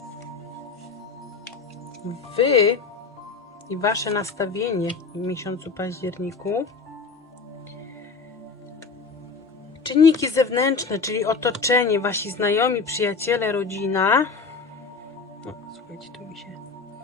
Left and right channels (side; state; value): right; quieter; 4.6 dB